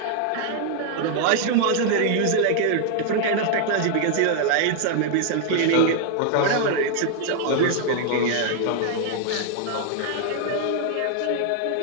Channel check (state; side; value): different; both; correlation 0.00